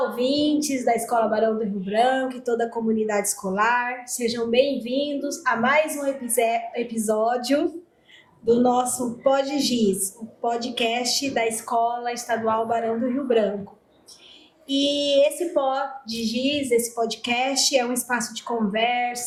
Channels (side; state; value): both; identical; correlation 1.00